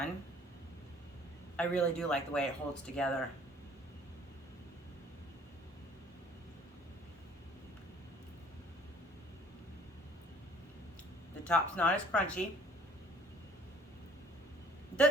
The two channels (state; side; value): normal; both; correlation 0.56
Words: I really do like the way it holds together. The top's not as crunchy.